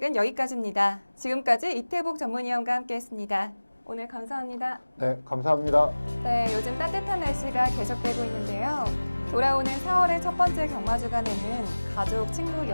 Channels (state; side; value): inverted; both; correlation -1.00